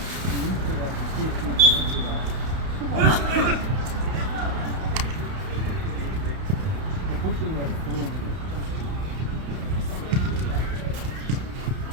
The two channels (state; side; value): late; left; 32 ms